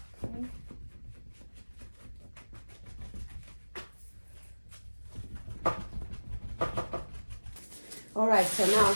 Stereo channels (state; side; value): inverted; both; correlation -1.00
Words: Okay. All right, so now